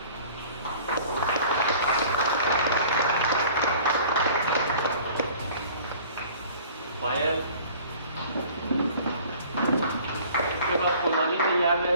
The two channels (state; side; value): inverted; both; correlation -0.49